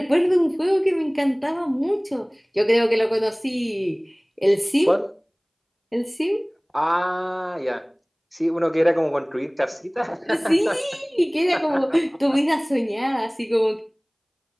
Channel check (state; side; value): identical; both; correlation 1.00